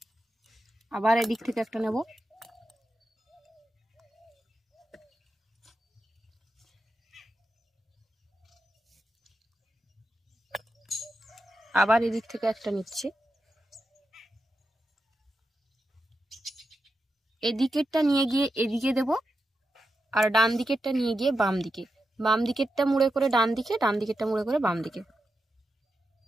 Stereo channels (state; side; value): normal; both; correlation 0.88